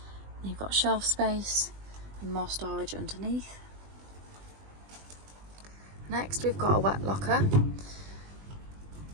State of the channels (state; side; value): late; left; 20 ms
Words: You've got shelf space and more storage underneath. Next we've got a wet locker.